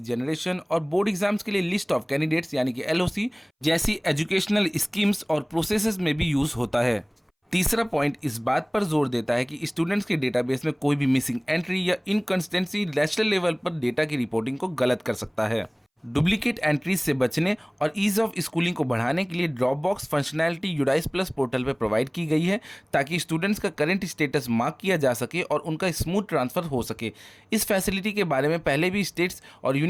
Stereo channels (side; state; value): both; identical; correlation 1.00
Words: और बोर्ड एग्जाम्स के लिए लिस्ट ऑफ कैंडिडेट्स यानी कि एलओसी जैसी एजुकेशनल स्कीम्स और प्रोसेसेस में भी यूज होता है। तीसरा पॉइंट इस बात पर जोर देता है कि स्टूडेंट्स के डेटाबेस में कोई भी मिसिंग एंट्री या इनकंसिस्टेंसी नेशनल लेवल पर डेटा की रिपोर्टिंग को गलत कर सकता है। डुप्लीकेट एंट्रीज से बचने और ईज ऑफ स्कूलिंग को बढ़ाने के लिए drop box functionality UDISE plus portal पर प्रोवाइड की गई है ताकि स्टूडेंट्स का करंट स्टेटस मार्क किया जा सके और उनका स्मूथ ट्रांसफर हो सके। इस फैसिलिटी के बारे में पहले भी स्टेट्स और